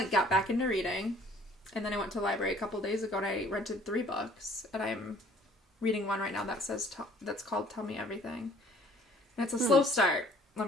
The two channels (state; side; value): normal; both; correlation 0.56